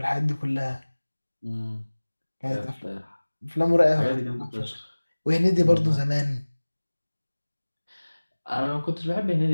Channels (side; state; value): both; inverted; correlation -1.00